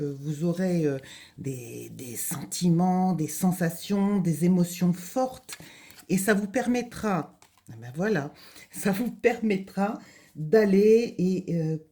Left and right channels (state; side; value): identical; both; correlation 1.00